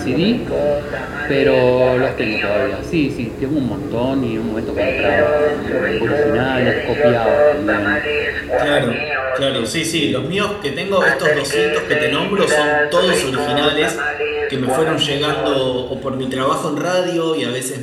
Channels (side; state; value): both; identical; correlation 1.00